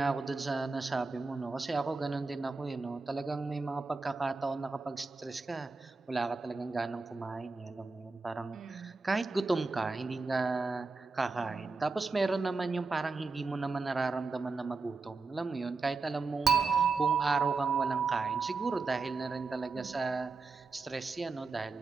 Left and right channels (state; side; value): quieter; left; 4.1 dB